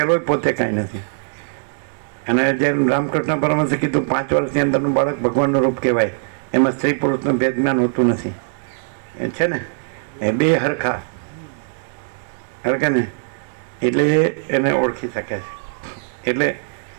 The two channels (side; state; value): left; silent; digital silence